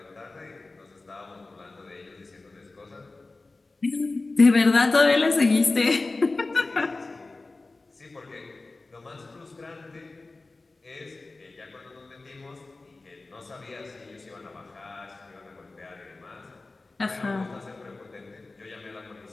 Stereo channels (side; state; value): right; quieter; 3.4 dB